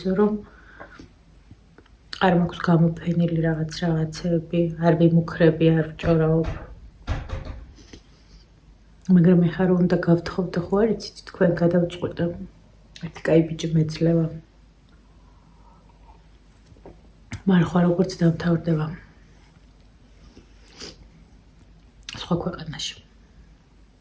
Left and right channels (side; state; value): both; identical; correlation 1.00